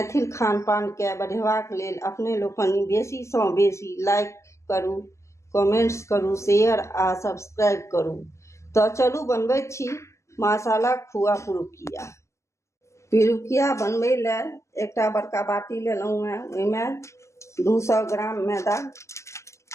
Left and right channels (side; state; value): right; late; 0.14 ms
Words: खानपान के बढ़ेबाक लेल अपने लोकनि बेसी सँ बेसी लाइक करू, कमेंट्स करू, शेयर आ सब्सक्राइब करू। तो चलू बनबैत छी मसाला खुआ पुरुकिया। पिरुकिया बनबै लेल एकटा बड़का बाटी लेलहुँ हैं। ओहिमे 200 ग्राम मैदा